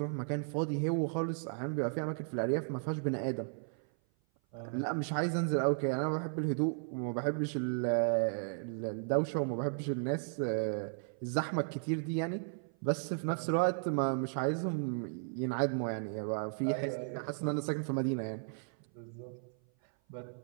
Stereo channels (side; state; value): left; silent; 54 dB below the other